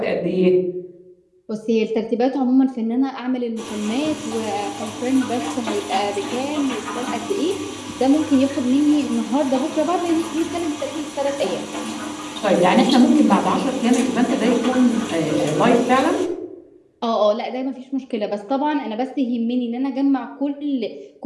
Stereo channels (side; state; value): both; identical; correlation 1.00